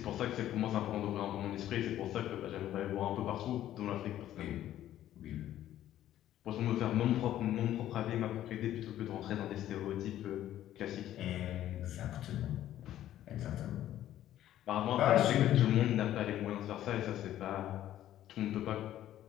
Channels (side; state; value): right; quieter; 12.5 dB